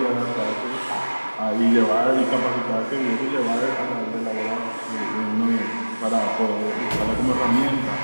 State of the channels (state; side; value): inverted; both; correlation -1.00